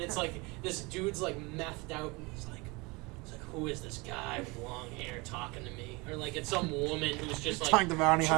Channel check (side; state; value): left; quieter; 26.0 dB